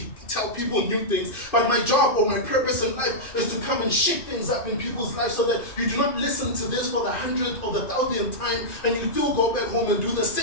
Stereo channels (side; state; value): right; late; 2.5 ms